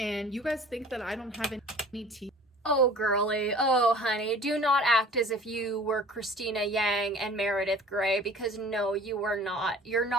you guys think that I don't have any tea. Oh, girly. Oh, honey. Do not act as if you were Christina Yang and Meredith Grey, because no, you were not. You're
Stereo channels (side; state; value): both; normal; correlation 0.46